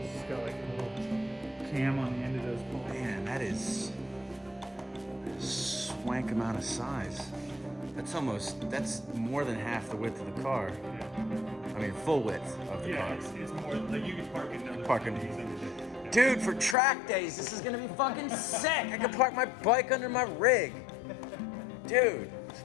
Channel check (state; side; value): drops out; right; at 16.8 s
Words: got like a little cam on the end of those poles. Man, that is a swank amount of size. That's more than half the width of the car. Yeah. I mean, full width of the car. It's more like you could park another Parking. these under there. Dude, for track days, this is gonna be fucking sick. I can park my bike under my rig. Dude,